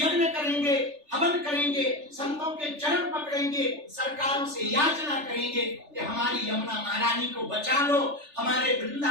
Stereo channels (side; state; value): left; late; 3.4 ms